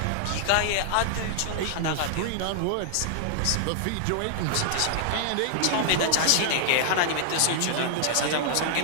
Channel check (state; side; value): different; both; correlation -0.01